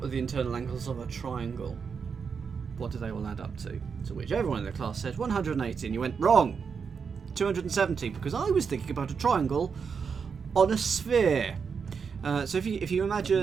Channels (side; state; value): left; quieter; 6.0 dB